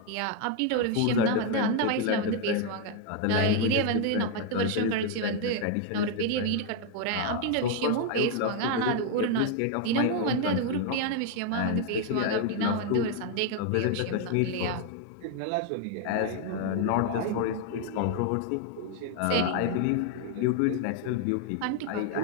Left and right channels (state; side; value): different; both; correlation 0.01